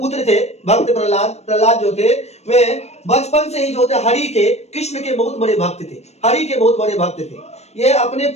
थे भक्त प्रहलाद जो थे, वे बचपन से ही जो थे हरि के, कृष्ण के बहुत बड़े भक्त थे, हरि के बहुत बड़े भक्त थे। ये अपने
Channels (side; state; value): right; late; 0.31 ms